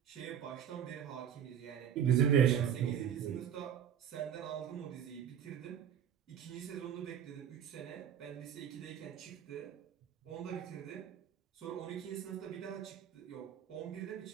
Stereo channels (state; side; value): quieter; left; 9.1 dB